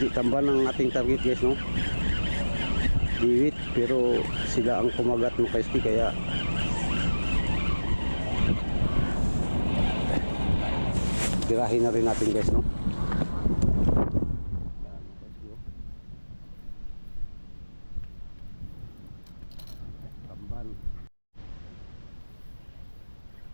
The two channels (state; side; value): inverted; both; correlation -1.00